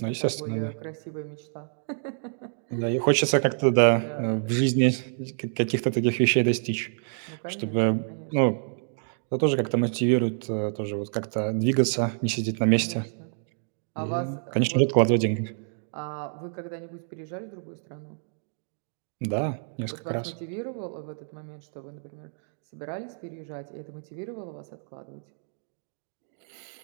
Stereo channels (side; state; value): left; silent; digital silence